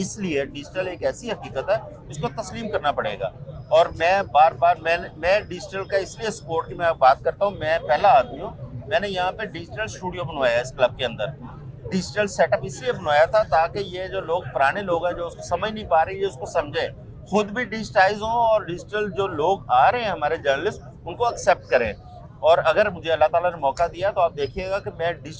डिजिटल एक ऐसी हकीकत है इसको तस्लीम करना पड़ेगा। और मैं बार मैं डिजिटल का इसलिए सपोर्ट की मैं बात करता हूँ, मैं पहला आदमी हूँ, मैंने यहाँ पे डिजिटल स्टूडियो बनवाया है इस क्लब के अंदर। डिजिटल सेटअप इसलिए बनवाया था ताकि ये जो लोग पुराने लोग हैं जो उसको समझ नहीं पा रहे ये उसको समझे, खुद भी डिजिटाइज हों और डिजिटल जो लोग आ रहे हैं हमारे जर्नलिस्ट उनको एक्सेप्ट करें। और अगर मुझे अल्लाह ताला ने मौका दिया तो आप देखिएगा कि मैं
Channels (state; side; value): identical; both; correlation 1.00